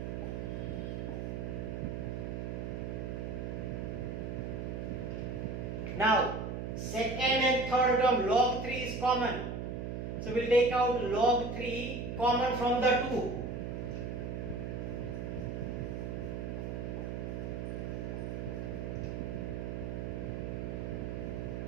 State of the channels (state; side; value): noise; right; hum, 4 dB below the sound